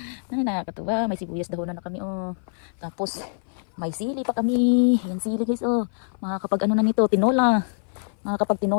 Nakakatuwa. May sibuyas dahon na kami Tapos may sili pa kami. Yan sili guys Makakapag na nito, tinola. Makakapag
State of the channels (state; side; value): silent; right; 58 dB below the other